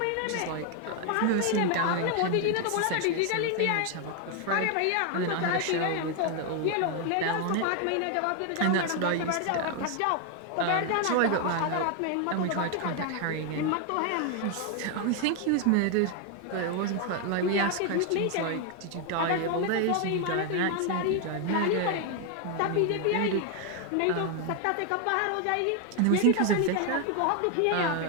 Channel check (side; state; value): both; different; correlation 0.01